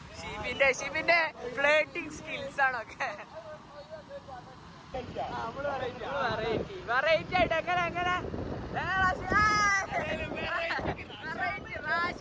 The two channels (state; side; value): identical; both; correlation 1.00